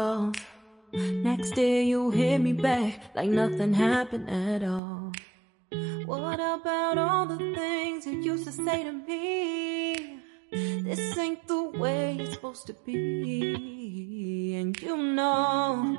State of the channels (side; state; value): left; drops out; at 4.8 s